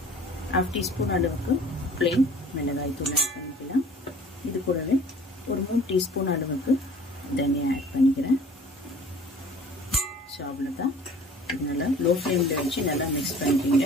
1/2 teaspoon அளவுக்கு பிளெயின் மிளகாய் தூள் ஆட் பண்ணிக்கலாம். இது கூடவே ஒரு 3 teaspoon அளவுக்கு தனியா ஆட் பண்ணிக்கிறேன். ஸோ அவ்வளோதான். இது நல்லா லோ ஃப்ளேமில் வச்சு நல்லா மிக்ஸ்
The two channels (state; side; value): normal; both; correlation 0.49